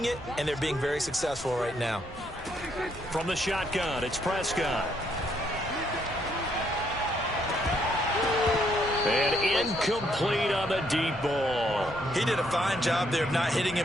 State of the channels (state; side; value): normal; both; correlation 0.72